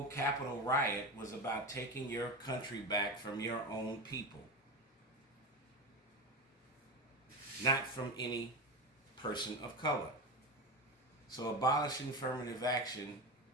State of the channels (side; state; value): both; normal; correlation 0.21